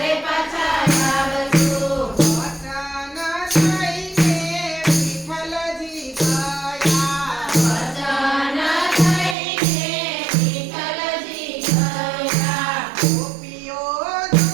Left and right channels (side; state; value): left; drops out; at 9.3 s